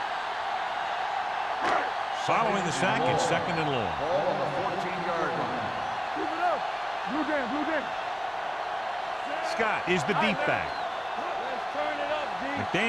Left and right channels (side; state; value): both; identical; correlation 1.00